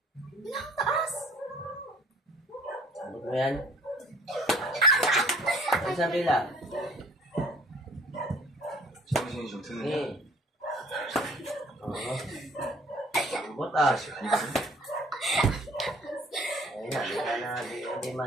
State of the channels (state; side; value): normal; both; correlation 0.54